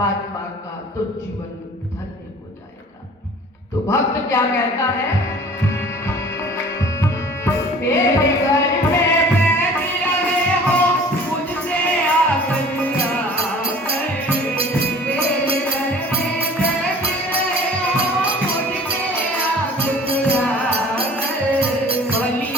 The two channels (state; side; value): normal; both; correlation 0.47